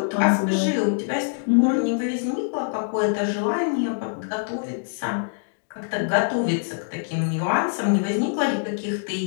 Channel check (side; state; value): right; silent; digital silence